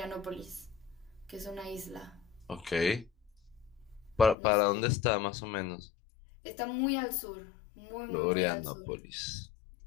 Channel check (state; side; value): drops out; right; at 4.4 s